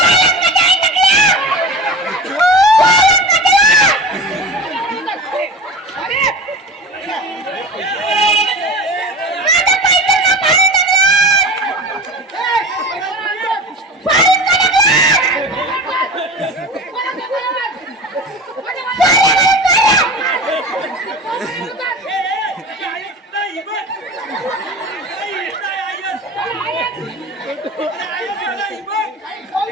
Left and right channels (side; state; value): both; normal; correlation 0.32